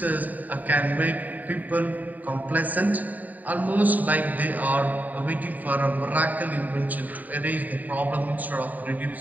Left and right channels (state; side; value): late; left; 0.081 ms